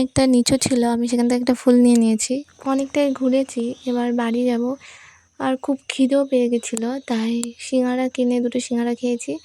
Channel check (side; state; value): both; identical; correlation 1.00